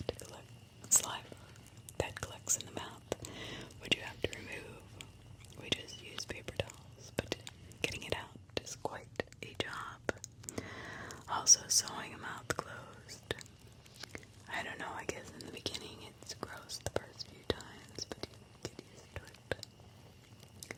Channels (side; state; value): both; identical; correlation 1.00